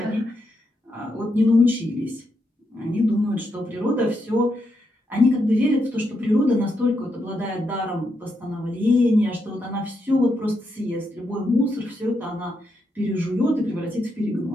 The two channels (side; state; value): both; normal; correlation 0.82